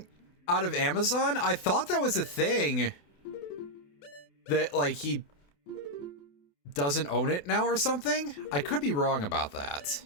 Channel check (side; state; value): right; late; 28 ms